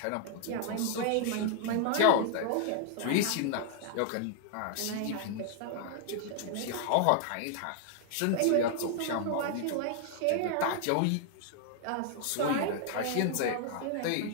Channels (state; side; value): different; both; correlation 0.00